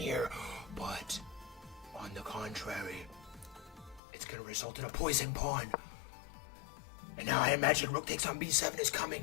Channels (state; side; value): drops out; right; at 4.0 s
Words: But on the contrary, it's going to result in a poison pawn. And now I imagine rook takes on b7 is